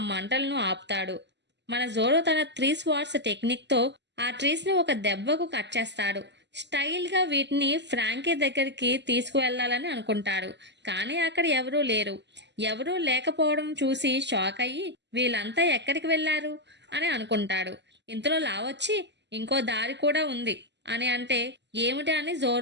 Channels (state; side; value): late; left; 0.51 ms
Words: మంటలను ఆపుతాడు. మన జోరో తన 3 స్వార్డ్స్ టెక్నిక్ తో ఆ ట్రీస్ ని ఒక దెబ్బకు కట్ చేస్తాడు. స్టైల్ గా వీటిని ఫ్రాంకీ దగ్గరికి తీసుకువెళ్లాలని అనుకుంటాడు. కానీ అక్కడ ఎవరూ లేకపోవడం చూసి షాక్ అయ్యి, వీళ్ళంతా ఎక్కడికి వెళ్లారు అని అనుకుంటాడు. ఇంతలో లా వచ్చి ఇంకో దారి కూడా ఉంది అని అంటే ఏమిటి అని